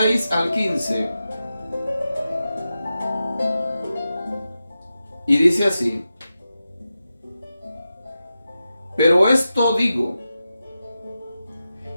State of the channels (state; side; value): inverted; both; correlation -0.91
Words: al 15. Y dice así: pero esto digo,